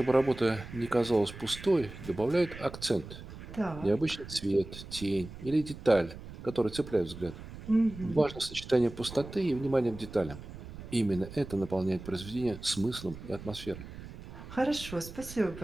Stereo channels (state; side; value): noise; right; rumble, 13 dB below the sound